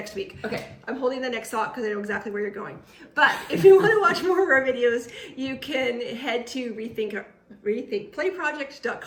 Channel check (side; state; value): both; identical; correlation 1.00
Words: week. Okay. I'm holding the next thought because I know exactly where you're going. But if you want to watch more of our videos, you can head to